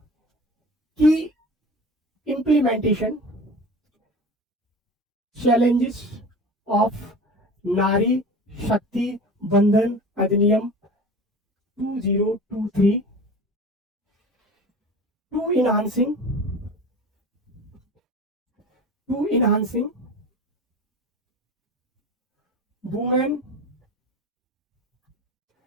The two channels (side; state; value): both; normal; correlation 0.36